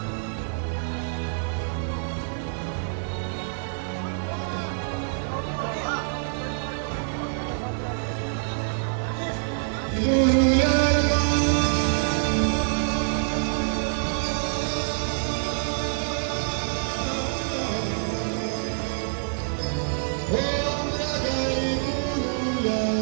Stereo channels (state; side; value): silent; left; digital silence